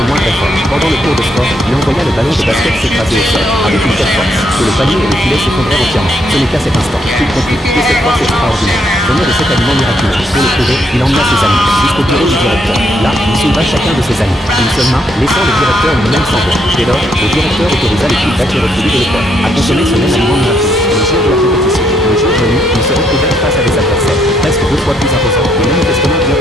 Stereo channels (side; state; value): both; normal; correlation 0.74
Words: le moindre effort. Pendant le cours de sport, il envoya le ballon de basket s'écraser au sol, avec une telle force, que le panier et le filet s'effondrèrent entièrement. Ce n'est qu'à cet instant qu'il comprit que cette force extraordinaire venait de cet aliment miraculeux. Pour le prouver, il emmena ses amis jusqu'au bureau du directeur. Là, il souleva chacun de ses amis d'une seule main, laissant le directeur lui-même sans voix. Dès lors, le directeur autorisa l'équipe d'accueillir le de l'école à consommer ce même aliment miraculeux. Le jour de la compétition, le jour venu, ils se retrouvèrent face à des adversaires presque 2 fois plus imposants, mais manifestement bien